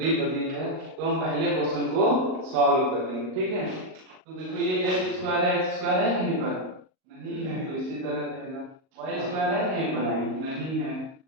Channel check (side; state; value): left; late; 38 ms